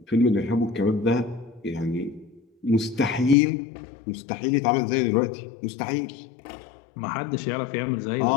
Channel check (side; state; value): right; drops out; at 3.4 s